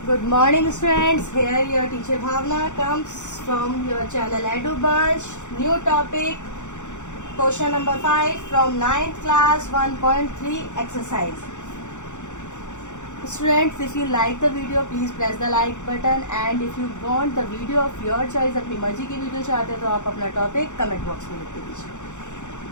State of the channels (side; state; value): right; late; 0.85 ms